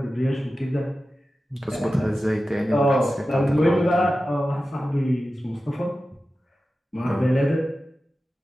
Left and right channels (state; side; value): normal; both; correlation 0.94